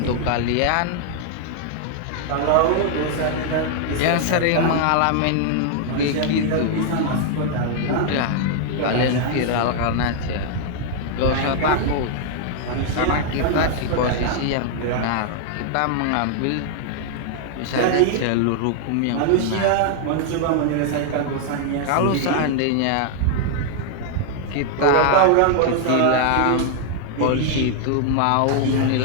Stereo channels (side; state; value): both; different; correlation 0.00